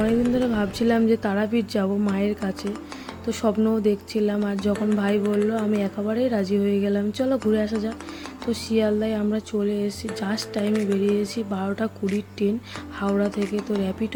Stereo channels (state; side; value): identical; both; correlation 1.00